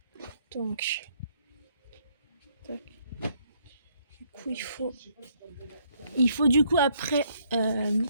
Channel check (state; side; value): inverted; both; correlation -0.69